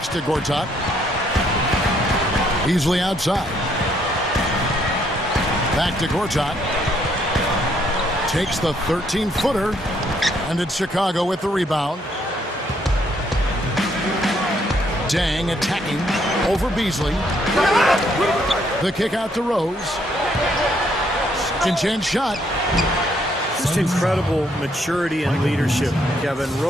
to Gortat. Beasley outside. Back to Gortat. Takes the 13-footer. And it's Chicago with the rebound. Dang attacking over Beasley. The kick out to Rose. Second chance shot. Just incredible maturity and leadership, Kevin.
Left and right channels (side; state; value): both; normal; correlation 0.70